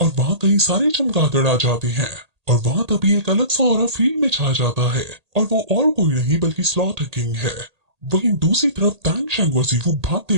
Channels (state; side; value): late; left; 1.8 ms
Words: वहाँ कई सारे चमगादड़ आ जाते हैं और वहाँ तभी एक अलग सा ऑरा फील्ड में छा जाता है और वो और कोई नहीं बल्कि स्लॉटर किंग है। वहीं दूसरी तरफ टैंग शैंग और जीवू भागते